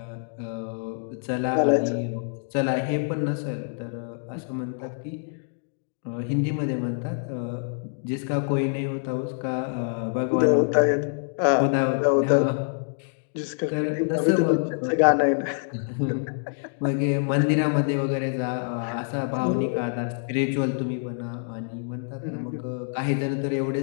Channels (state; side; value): silent; right; digital silence